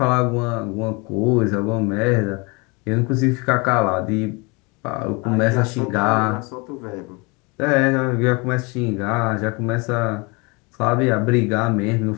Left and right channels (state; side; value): quieter; right; 28.6 dB